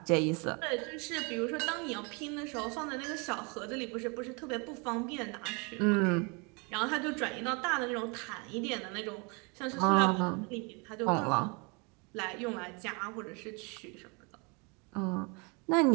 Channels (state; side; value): quieter; left; 31.3 dB